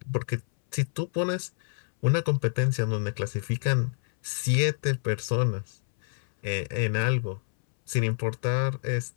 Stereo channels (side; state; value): right; silent; 60 dB below the other